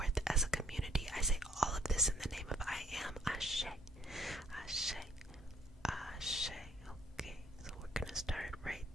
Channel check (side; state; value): both; normal; correlation 0.64